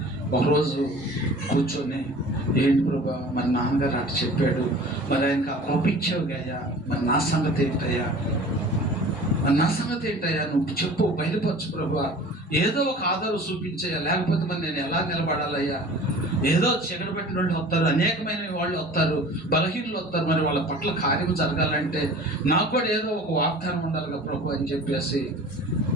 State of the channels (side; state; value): both; normal; correlation 0.43